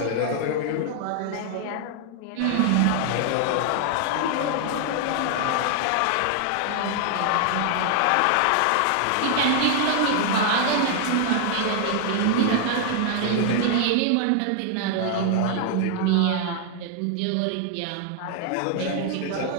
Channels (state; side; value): different; both; correlation 0.00